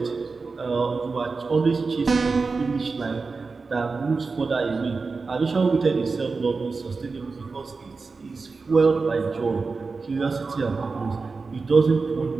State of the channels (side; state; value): left; quieter; 4.3 dB